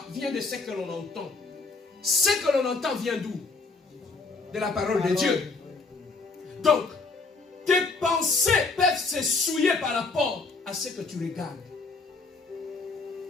vient de ce que l'on entend. Ce que l'on entend vient d'où? De la parole de Dieu. Donc, tes pensées peuvent se souiller par rapport à ce que tu regardes.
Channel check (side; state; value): right; quieter; 4.0 dB